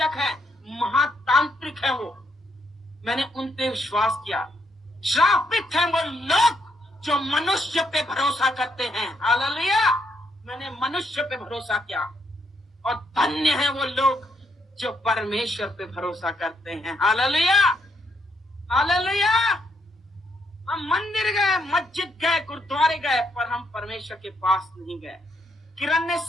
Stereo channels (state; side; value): normal; both; correlation 0.75